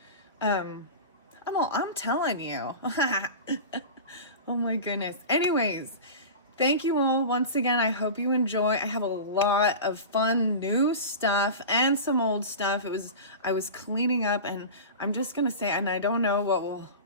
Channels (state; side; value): inverted; both; correlation -0.30